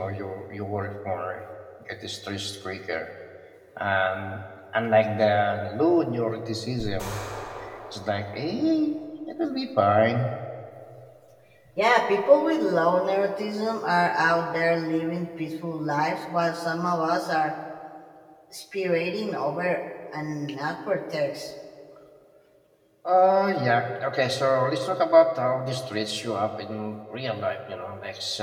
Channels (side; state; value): both; identical; correlation 1.00